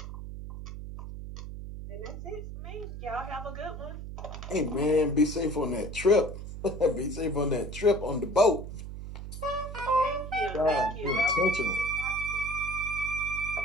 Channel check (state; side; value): noise; right; hum, 9 dB below the sound